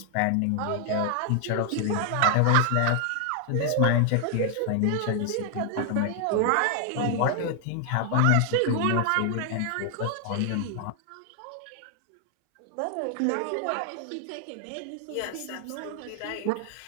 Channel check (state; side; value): different; both; correlation 0.00